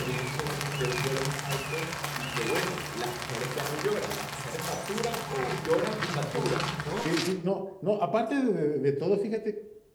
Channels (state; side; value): identical; both; correlation 1.00